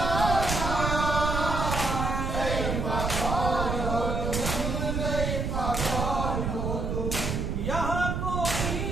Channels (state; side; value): noise; right; rumble, 1 dB below the sound